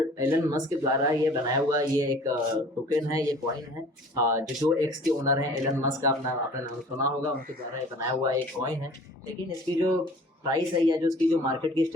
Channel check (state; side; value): normal; both; correlation 0.48